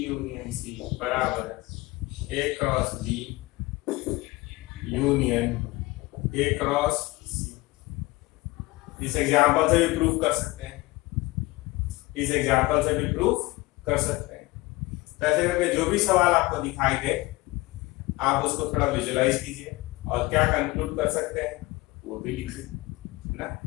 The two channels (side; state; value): right; quieter; 21.1 dB